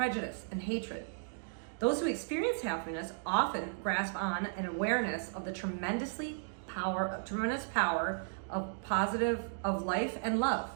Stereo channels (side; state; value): left; silent; digital silence